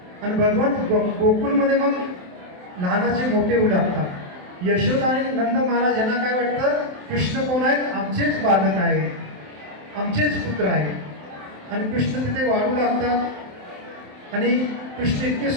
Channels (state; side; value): late; left; 27 ms